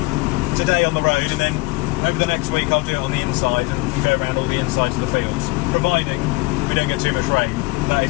today on the road, and then over the next week I'll do it on the inside and go around all the insides of the fields, providing we don't get too much rain. That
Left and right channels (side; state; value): right; quieter; 23.6 dB